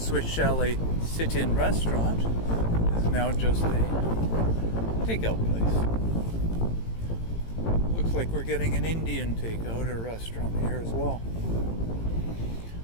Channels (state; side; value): late; right; 18 ms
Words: Chalet sit-in restaurant is now just a takeout place. Looks like we're getting an Indian takeout or restaurant here as well.